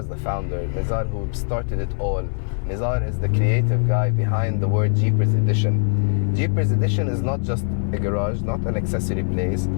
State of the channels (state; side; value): silent; right; 64 dB below the other